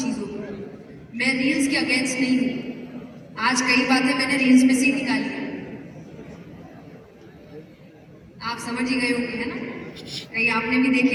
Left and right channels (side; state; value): both; identical; correlation 1.00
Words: को। मैं रील्स के अगेंस्ट नहीं हूं, आज कई बातें मैंने रील्स में से ही निकाली है, आप समझ ही गए होंगे, है ना? कहीं आपने भी